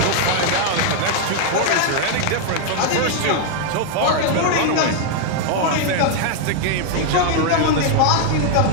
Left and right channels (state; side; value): different; both; correlation 0.00